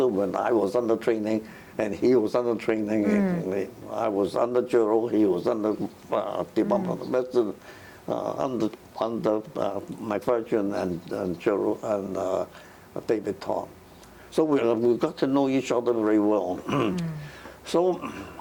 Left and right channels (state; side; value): identical; both; correlation 1.00